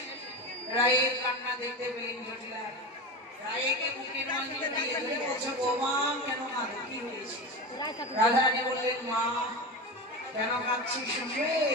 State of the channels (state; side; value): normal; both; correlation 0.24